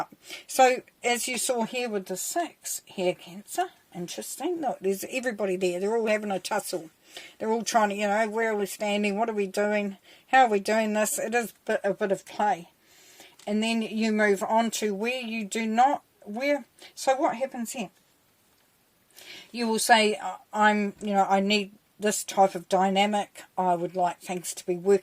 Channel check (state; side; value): identical; both; correlation 1.00